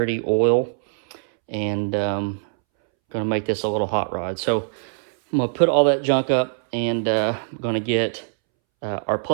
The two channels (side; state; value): left; silent; 64 dB below the other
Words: oil, and going to make this a little hot rod. So I'm going to put all that junk up, and I'm going to get our